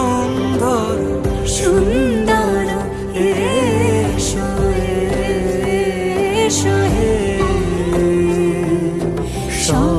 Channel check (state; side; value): identical; both; correlation 1.00